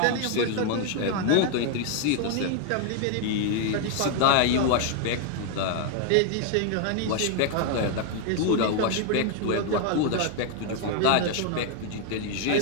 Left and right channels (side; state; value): both; different; correlation 0.00